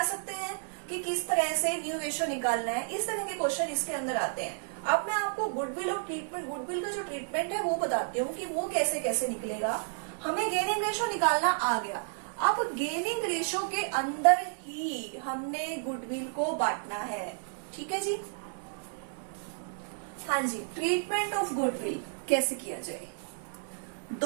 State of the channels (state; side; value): silent; left; digital silence